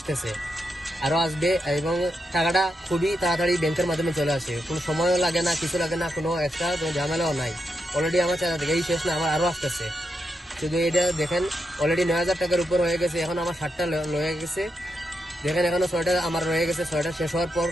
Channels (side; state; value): both; normal; correlation 0.84